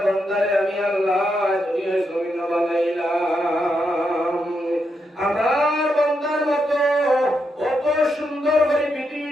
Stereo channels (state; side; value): normal; both; correlation 0.82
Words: বান্দারে আমি আল্লাহ দুনিয়ার জমিন বানাইলাম। আমার বান্দার মতো কত সুন্দর করে